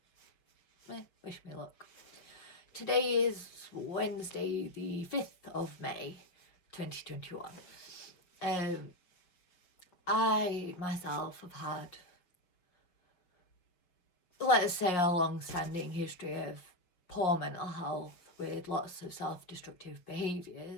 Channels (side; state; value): right; late; 5.6 ms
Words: wish me luck. Today is Wednesday the 5th of May 2021. I myself have had, let's say, a long-standing history of poor mental health with lots of self-destructive